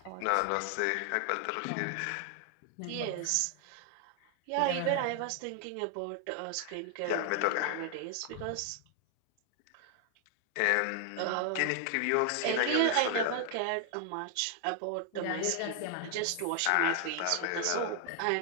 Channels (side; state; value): both; different; correlation 0.00